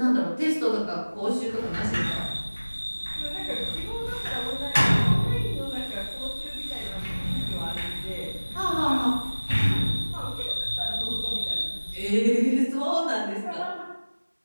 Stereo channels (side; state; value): both; inverted; correlation -1.00